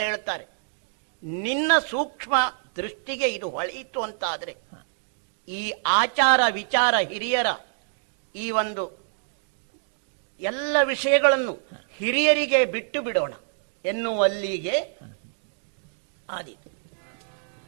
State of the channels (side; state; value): left; silent; digital silence